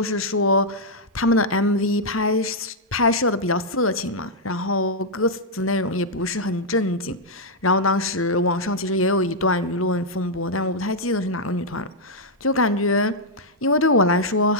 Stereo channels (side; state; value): both; normal; correlation -0.05